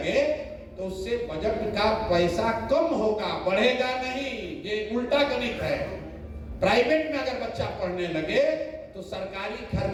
तो उससे बजट का पैसा कम होगा, बढ़ेगा नहीं। ये उल्टा गणित है। प्राइवेट में अगर बच्चा पढ़ने लगे तो सरकारी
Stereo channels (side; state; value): both; identical; correlation 1.00